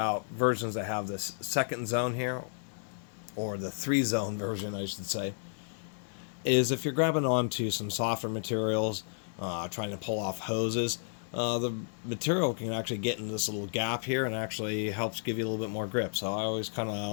versions that have this second zone here, or the 3-zone version I should say, is if you're grabbing onto some softer materials, trying to pull off hoses, the material can actually get into this little gap here and actually helps give you a little bit more grip. So I always kind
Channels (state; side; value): silent; right; digital silence